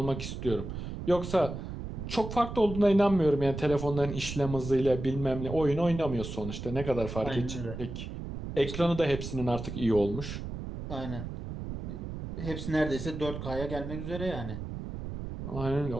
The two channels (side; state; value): right; noise; rumble, 7 dB below the sound